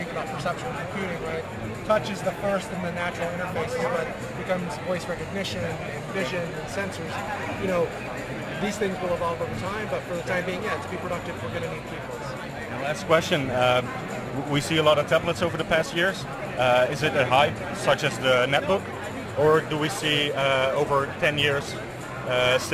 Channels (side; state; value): both; identical; correlation 1.00